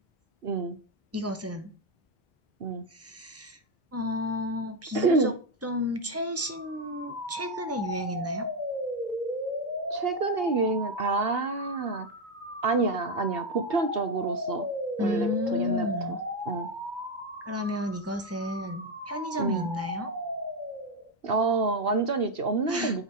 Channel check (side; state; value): both; normal; correlation 0.07